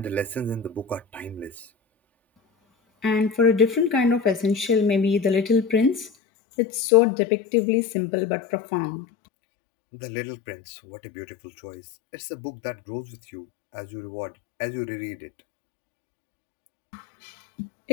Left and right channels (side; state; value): right; drops out; at 6.1 s